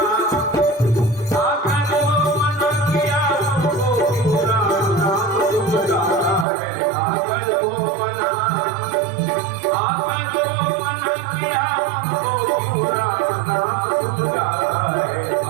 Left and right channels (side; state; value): left; drops out; at 6.5 s